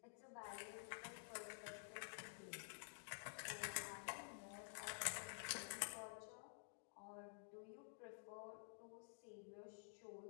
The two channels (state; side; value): silent; right; digital silence